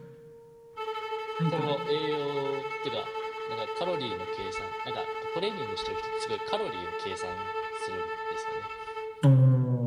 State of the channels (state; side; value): identical; both; correlation 1.00